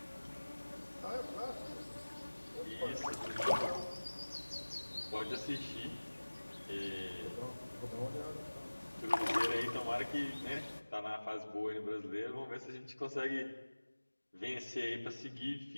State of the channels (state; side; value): inverted; both; correlation -1.00